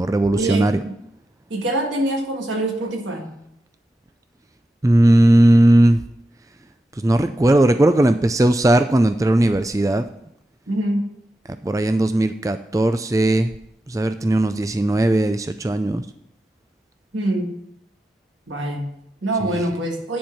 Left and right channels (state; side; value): normal; both; correlation 0.89